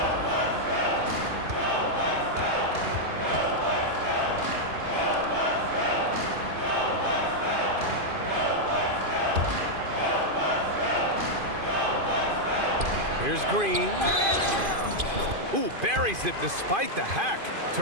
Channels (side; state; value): left; late; 2.5 ms